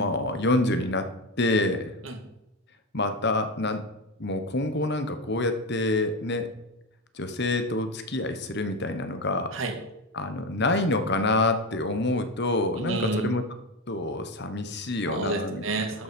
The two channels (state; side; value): normal; both; correlation 0.16